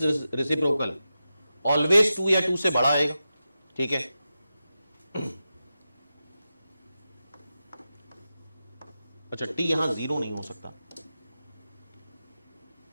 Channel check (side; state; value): both; inverted; correlation -0.91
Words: reciprocal always 2 या 2 से बड़ा आएगा। ठीक है, अच्छा टी यहां 0 नहीं हो सकता।